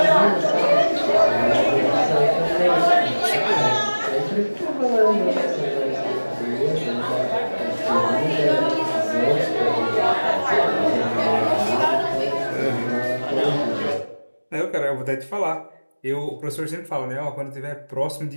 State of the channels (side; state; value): both; inverted; correlation -1.00